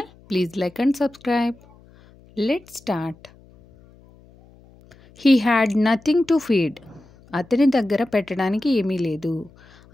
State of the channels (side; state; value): left; noise; hum, 27 dB below the sound